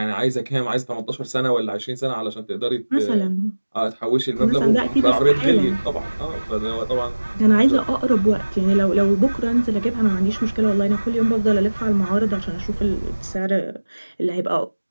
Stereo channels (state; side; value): inverted; both; correlation -1.00